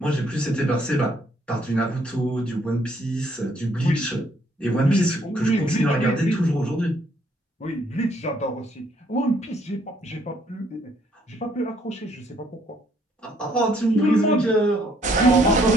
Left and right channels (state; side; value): normal; both; correlation 0.67